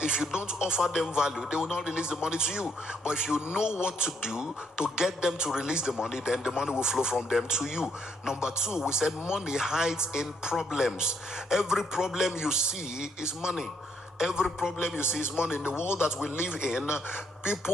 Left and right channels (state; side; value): normal; both; correlation 0.71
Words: if you don't offer them value, they will not release the money to you. But if you know what to do to get them to release the money, then the money will flow from them to you. Number two, we said money hides in problems. Every problem you see is money. Every problem you see is money. In the world that we live in,